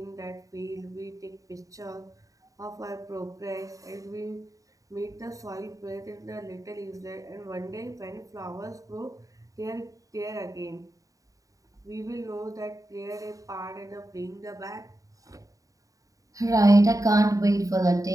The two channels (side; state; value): left; late; 0.16 ms